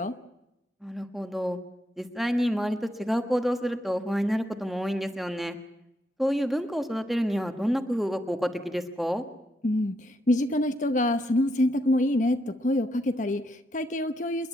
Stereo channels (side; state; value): both; normal; correlation 0.79